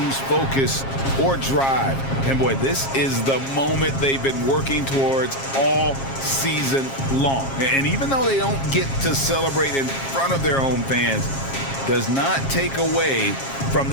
focus or drive. And boy, this is the moment they've been working towards all season long. And even though they don't get to celebrate in front of their home fans, does not take away from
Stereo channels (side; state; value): right; late; 7.4 ms